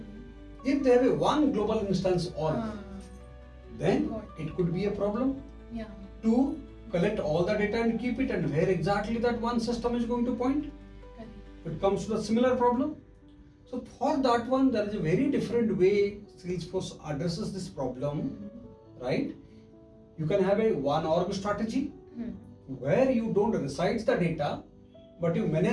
If they have a one global instance org, then it could be a problem Yeah. to collect all the data and keep it, and where exactly that one system is going to point. Correct. It comes to a similar problem. So for that one, there is a very different way Salesforce addresses this problem, right? You can have a one org strategy where you don't reside the data, but you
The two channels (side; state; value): both; identical; correlation 1.00